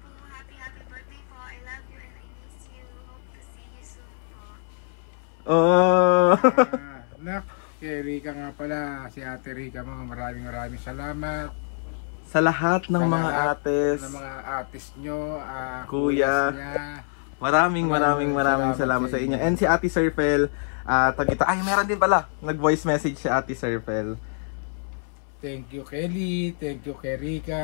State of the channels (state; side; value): silent; right; 61 dB below the other